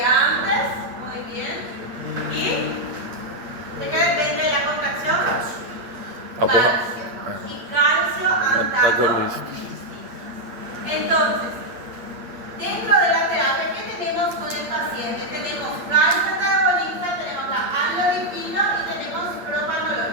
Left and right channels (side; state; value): left; late; 8.7 ms